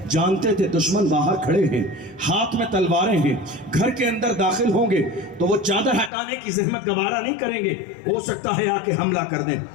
جانتے تھے دشمن باہر کھڑے ہیں، ہاتھ میں تلواریں ہیں، گھر کے اندر داخل ہوں گے تو وہ چادر ہٹانے کی زحمت گوارا نہیں کریں گے، ہو سکتا ہے آ کے حملہ کر دیں،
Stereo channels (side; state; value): right; drops out; at 6.1 s